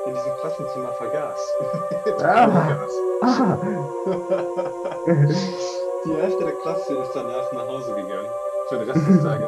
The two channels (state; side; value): identical; both; correlation 1.00